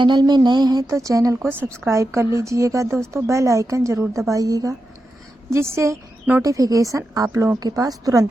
में नए हैं तो चैनल को सब्सक्राइब कर लीजिएगा दोस्तों, बेल आइकन ज़रूर दबाइएगा जिससे नोटिफिकेशन आप लोगों के पास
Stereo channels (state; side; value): normal; both; correlation 0.89